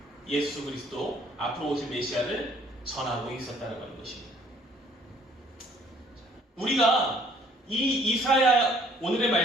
예수 그리스도 앞으로 오실 메시아를 전하고 있었다고 하는 것입니다. 우리가 이 이사야 오늘의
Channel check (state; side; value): normal; both; correlation 0.60